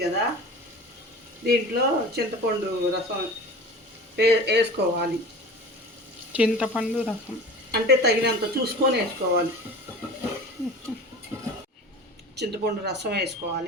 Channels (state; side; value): normal; both; correlation 0.37